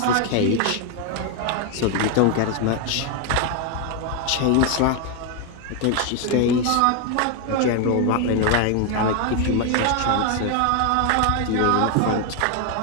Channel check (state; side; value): different; both; correlation 0.01